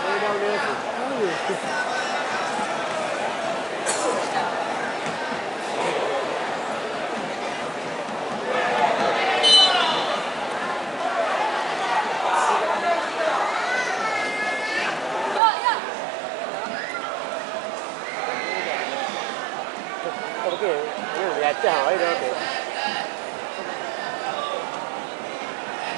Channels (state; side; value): drops out; left; at 15.4 s